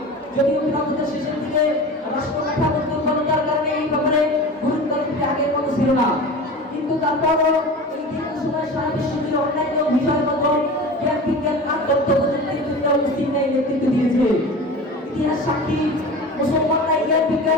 যদিও খিলাফতের শেষের দিকে রাষ্ট্র কাঠামোর দুর্বলতার কারণে এই ব্যাপারে গুরুত্ব দিতে আগের মতো ছিল না, কিন্তু তারপরও এই দীর্ঘ সময় সারা বিশ্ব জুড়ে অন্যান্য বিষয়গত জ্ঞান বিজ্ঞান আর তথ্য প্রযুক্তির জন্য মুসলিম নেতৃত্ব দিয়েছে। ইতিহাস সাক্ষী মুসলমানরা জ্ঞান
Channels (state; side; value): normal; both; correlation 0.33